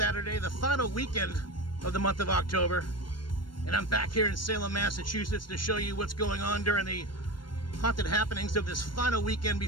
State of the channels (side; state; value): right; late; 0.72 ms